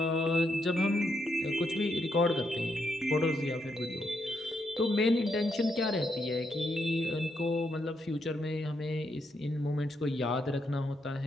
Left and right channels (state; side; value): normal; both; correlation 0.79